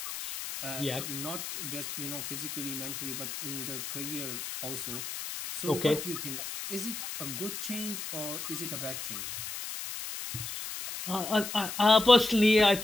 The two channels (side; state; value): left; noise; hiss, 7 dB below the sound